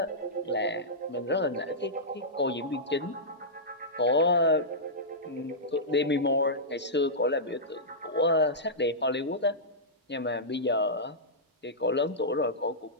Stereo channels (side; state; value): both; normal; correlation -0.14